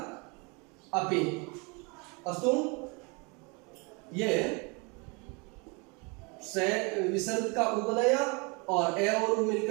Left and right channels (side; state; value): left; quieter; 30.5 dB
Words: अपि। अस्तु, ये से विसर्ग का उ बनाया और ए और उ